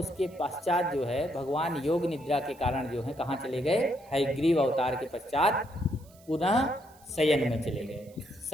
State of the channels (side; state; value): right; noise; hiss, 27 dB below the sound